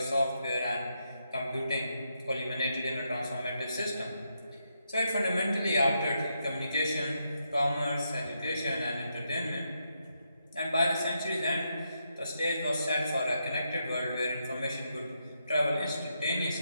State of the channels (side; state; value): both; inverted; correlation -0.82